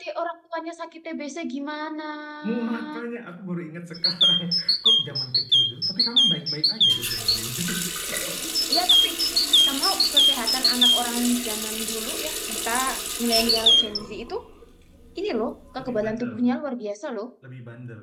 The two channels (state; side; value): identical; both; correlation 1.00